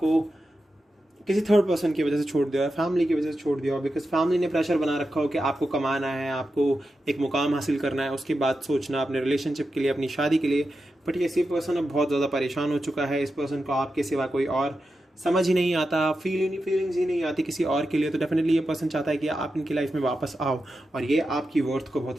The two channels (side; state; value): both; normal; correlation 0.89